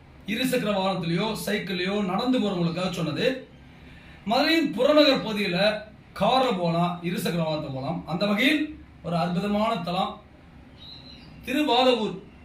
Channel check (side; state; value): both; identical; correlation 1.00